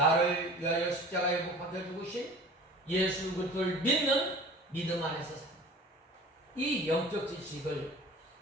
위하여 십자가에 못 박혀 죽으신 예수 그리스도를 믿는 믿음 안에서 삽니다. 이 영적 지식을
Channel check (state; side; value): normal; both; correlation 0.42